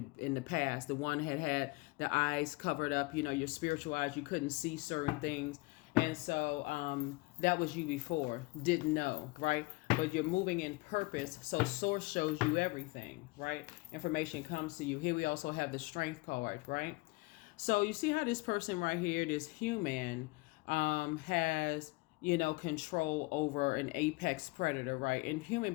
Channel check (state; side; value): quieter; right; 24.4 dB